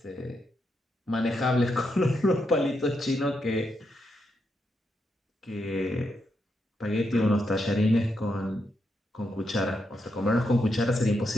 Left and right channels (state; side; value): normal; both; correlation 0.82